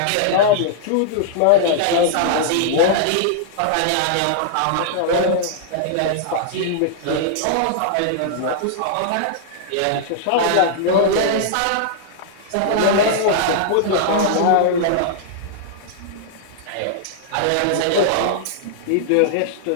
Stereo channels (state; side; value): different; both; correlation -0.01